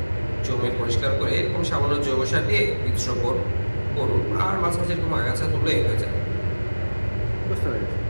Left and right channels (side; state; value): both; inverted; correlation -1.00